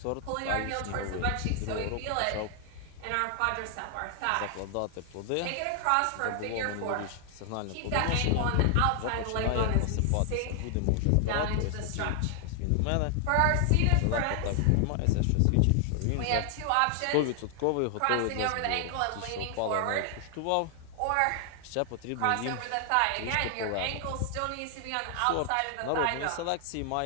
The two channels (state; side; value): different; both; correlation 0.00